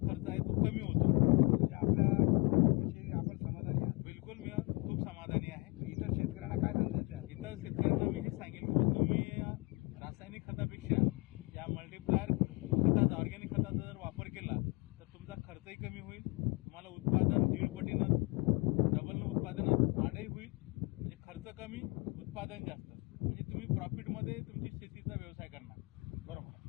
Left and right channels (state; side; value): quieter; right; 27.7 dB